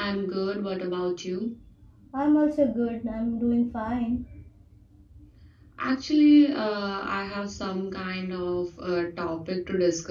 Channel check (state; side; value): identical; both; correlation 1.00